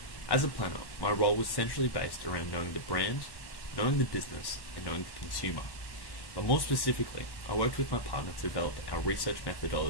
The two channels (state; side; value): late; right; 1.1 ms